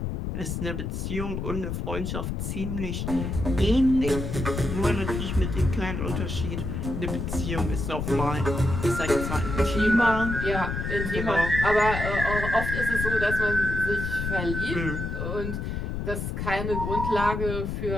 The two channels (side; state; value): left; noise; rumble, 3 dB below the sound